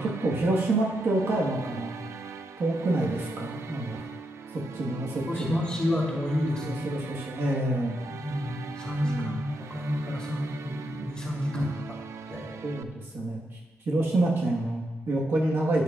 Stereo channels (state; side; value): normal; both; correlation 0.82